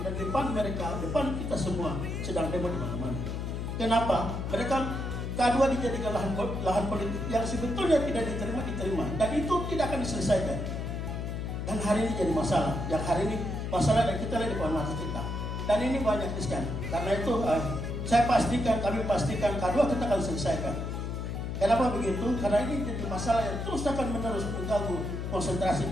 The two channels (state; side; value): noise; left; hum, 4 dB below the sound